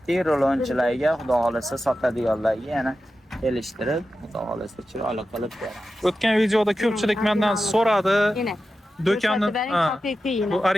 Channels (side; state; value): both; normal; correlation 0.92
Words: rolonchilarga, xudo xolasa sotadiganlarga yana kelishtirib, xudo xolasa chiroyli qilib beramiz. O'tgan videoda ko'pchilik mendan so'radi. Yine. Do'konni Bering haqiqiy yine. bu